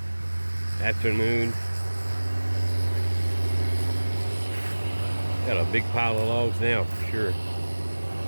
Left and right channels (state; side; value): inverted; both; correlation -1.00